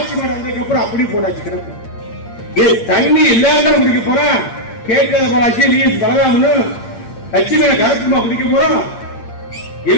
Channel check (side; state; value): right; late; 8.7 ms